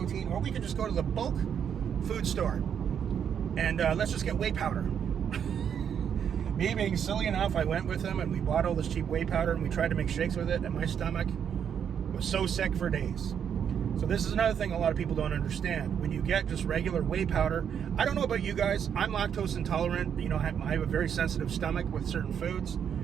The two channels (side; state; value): left; quieter; 8.2 dB